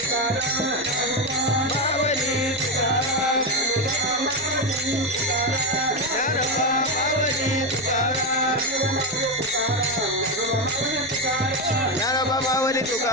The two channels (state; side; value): noise; left; rumble, 24 dB below the sound